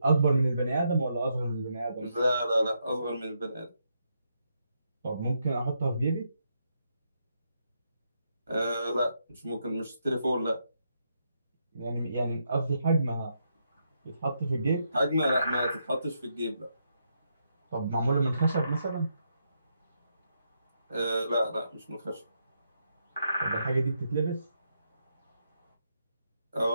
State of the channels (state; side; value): inverted; both; correlation -0.80